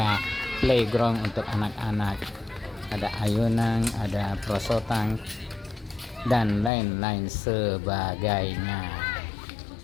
playground untuk anak-anak, ada ayunan, ada perosotan, dan lain-lain sebagainya.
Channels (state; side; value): drops out; right; at 6.7 s